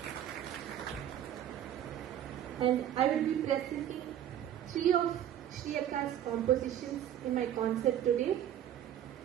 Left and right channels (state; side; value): quieter; left; 10.8 dB